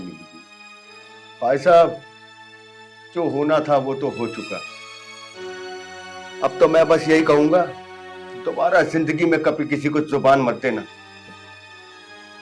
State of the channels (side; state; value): both; identical; correlation 1.00